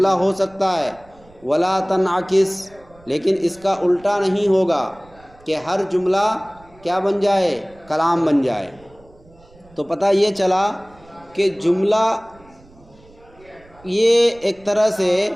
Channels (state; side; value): noise; right; rumble, 27 dB below the sound